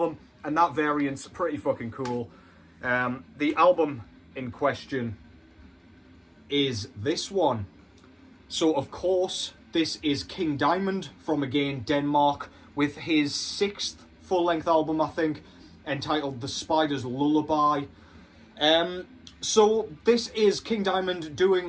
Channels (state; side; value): identical; both; correlation 1.00